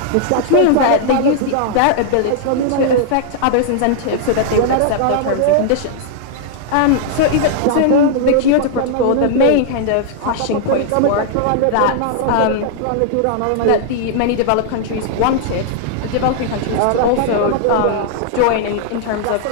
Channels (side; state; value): both; different; correlation -0.01